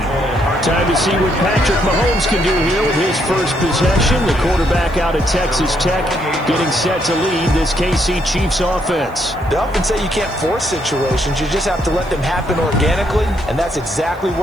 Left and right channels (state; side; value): noise; right; hiss, 28 dB below the sound